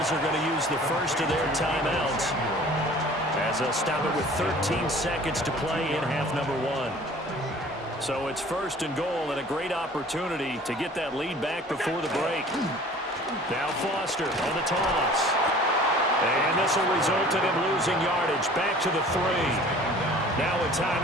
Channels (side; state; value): both; normal; correlation 0.48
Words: are going to use the first of their timeouts as they'll stop it with 13 seconds to play in half number 1. So it's 1st and goal and a great opportunity to get that lead back before the break. Now Foster on the toss. And this will result in him losing yardage. Back to the 3. Now a